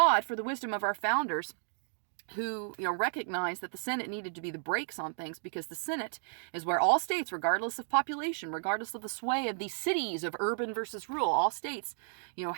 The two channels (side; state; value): left; silent; digital silence